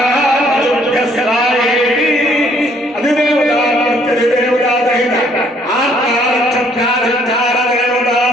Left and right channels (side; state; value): both; normal; correlation 0.64